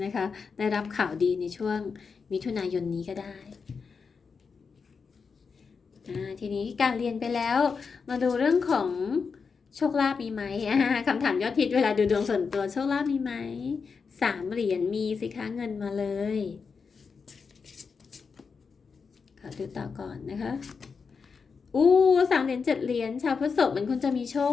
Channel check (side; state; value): right; quieter; 5.4 dB